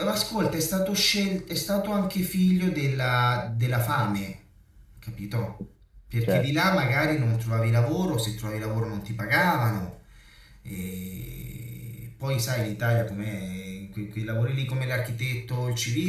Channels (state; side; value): identical; both; correlation 1.00